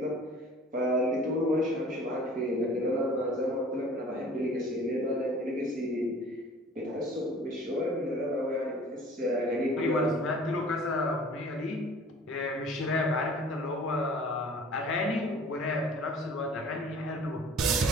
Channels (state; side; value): normal; both; correlation 0.47